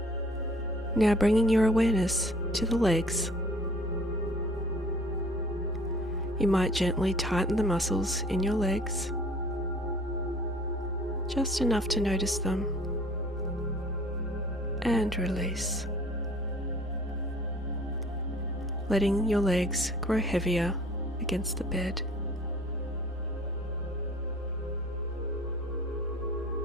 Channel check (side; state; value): both; normal; correlation 0.52